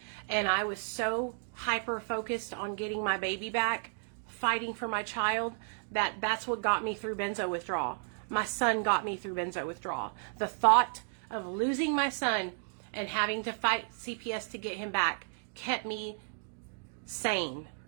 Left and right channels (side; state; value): left; silent; 56 dB below the other